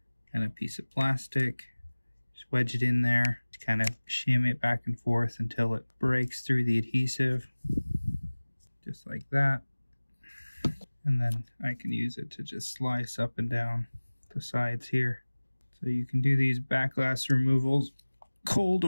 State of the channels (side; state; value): both; inverted; correlation -1.00